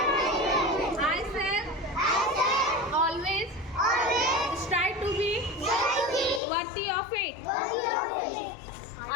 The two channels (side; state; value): right; drops out; at 6.4 s